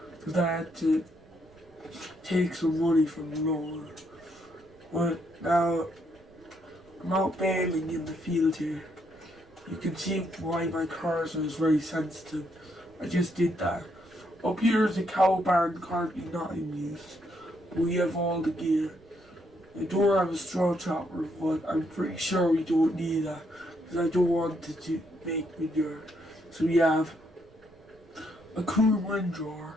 Because I had to take some money from the loan. But now I'm out bailing in the field here. You can see why my cursor is very sensitive. I just did that. Up here is a cow barn currently not in use. We have all the gear. I don't have a straw chopper, but I'm pretty sure we don't need that, because I don't want it to make manure. So we have a coon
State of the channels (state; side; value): noise; right; rumble, 28 dB below the sound